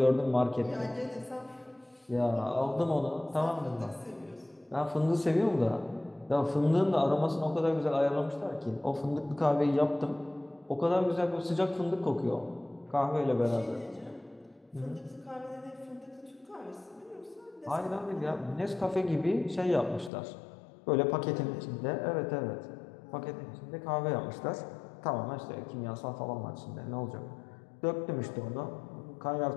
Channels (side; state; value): right; drops out; at 20.1 s